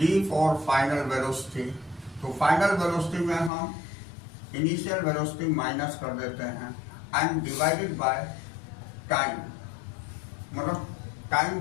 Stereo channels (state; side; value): drops out; right; at 3.5 s